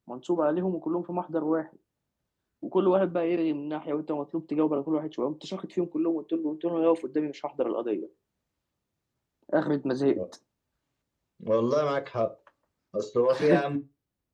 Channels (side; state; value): both; identical; correlation 1.00